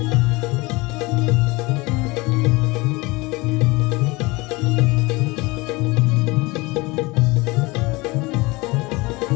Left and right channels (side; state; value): right; quieter; 23.6 dB